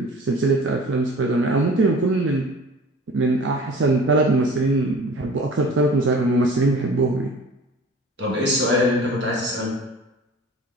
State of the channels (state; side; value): normal; both; correlation 0.43